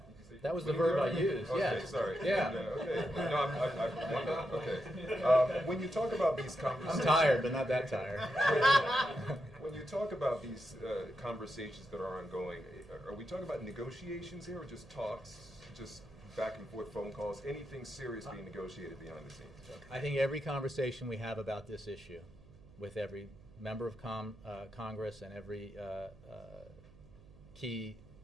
say That was the winning verb I it? used. Okay, Yeah. sorry. Yeah. Okay. No, I wonder. Okay. When you talk about these conversations, I'm tired, but not that tired. When you talk about these conversations that are ongoing, are we talking about negotiations here, or just talks, just back and forth phone calls? Anything serious being negotiated behind the scenes? I think every conversation we have about this issue, with every member of Congress and every key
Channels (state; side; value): noise; right; hum, 22 dB below the sound